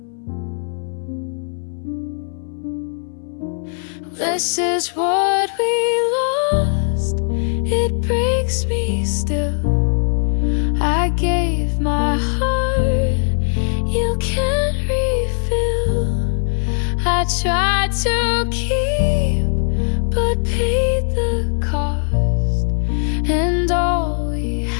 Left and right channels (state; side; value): silent; right; 65 dB below the other